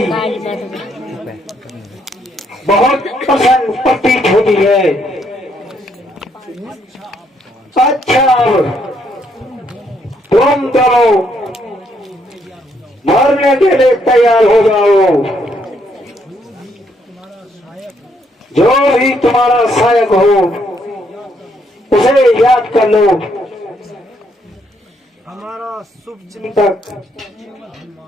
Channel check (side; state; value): both; normal; correlation 0.72